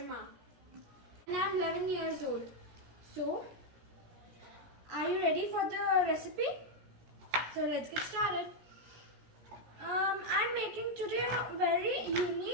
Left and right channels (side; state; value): left; late; 17 ms